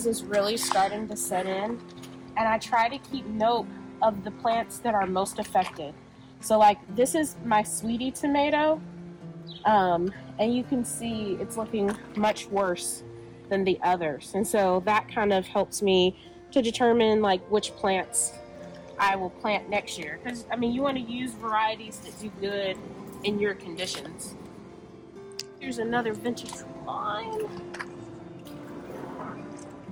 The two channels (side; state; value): both; identical; correlation 1.00